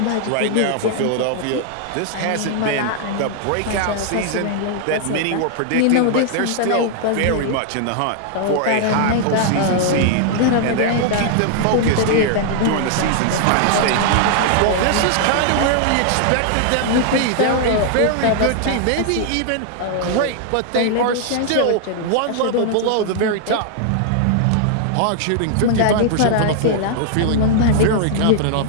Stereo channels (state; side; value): different; both; correlation 0.00